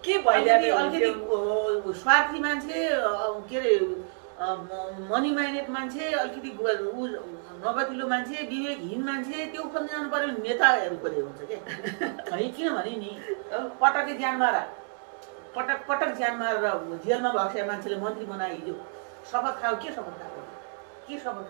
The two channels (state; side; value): silent; left; 59 dB below the other